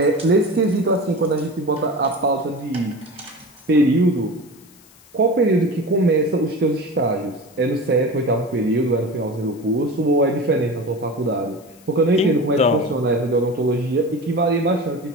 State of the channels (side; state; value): left; noise; hiss, 27 dB below the sound